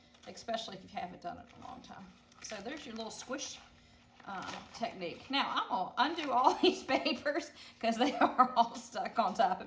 especially if you haven't done it in a long time. So there's your little squish technique. Now I'm gonna undo all these papers because they are all stuck on top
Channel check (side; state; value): both; identical; correlation 1.00